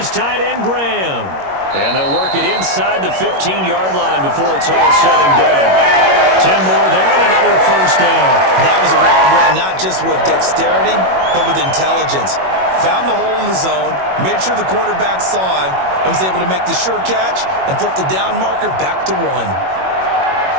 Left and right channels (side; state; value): left; late; 21 ms